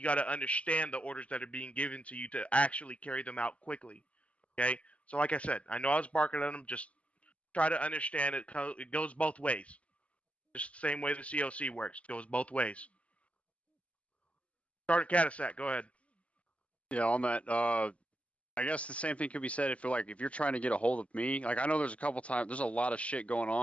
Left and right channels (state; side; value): late; right; 0.063 ms